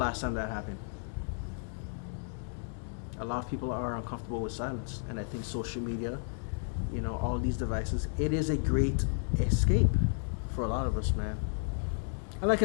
time that happened? A lot of people are uncomfortable with silence, and I think social media, all these devices, it is a great escape for a lot of us, man. And like I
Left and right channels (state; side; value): silent; right; 56 dB below the other